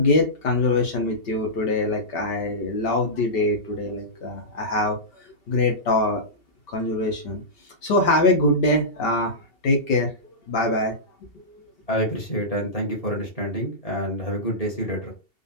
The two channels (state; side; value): late; right; 2.7 ms